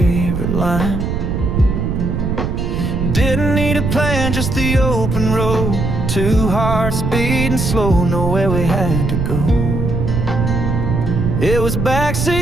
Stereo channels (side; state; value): right; noise; rumble, 1 dB below the sound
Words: line. Didn't need a plan, just the open road. 2 hearts beating slow, nowhere we had to go. It was